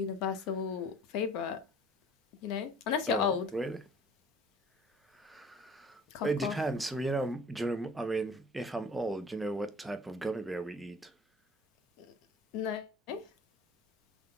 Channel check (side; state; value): both; normal; correlation 0.48